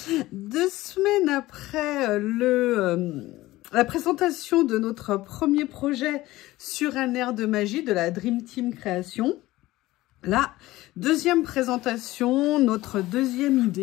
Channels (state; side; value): quieter; right; 17.6 dB